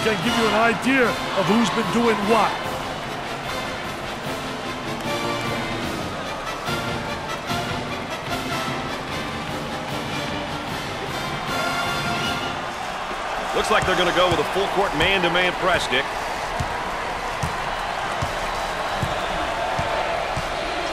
give you an idea of who's been doing what. Looks like they're going to go with a full-court man-to-man press, Dick.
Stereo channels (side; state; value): both; identical; correlation 1.00